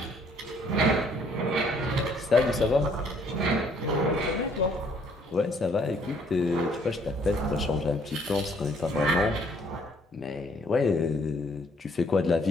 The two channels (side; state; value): both; normal; correlation 0.64